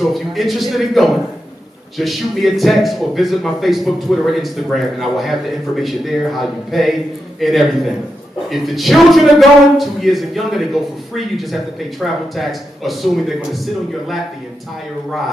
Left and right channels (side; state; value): both; normal; correlation 0.86